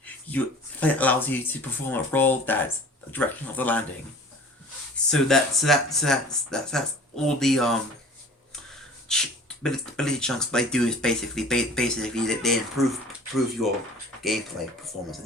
It allows you to perform a roll that's the direction of the landing. So that's all the ability chunks they do is basically they improve your gameplay performance,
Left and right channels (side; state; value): both; normal; correlation 0.45